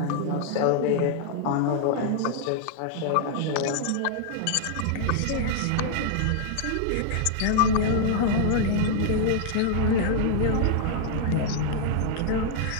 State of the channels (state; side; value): different; both; correlation -0.01